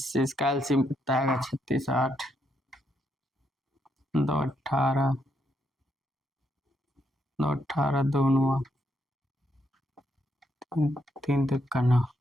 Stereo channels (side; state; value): both; normal; correlation 0.77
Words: इसका एलसीएम कितना आएगा 36 8 2 18, 2 18 दोनों 3 3 9